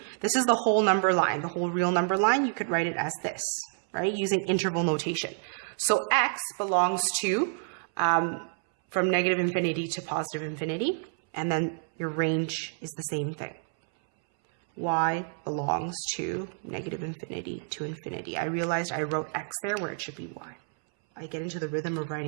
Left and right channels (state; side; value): silent; left; 59 dB below the other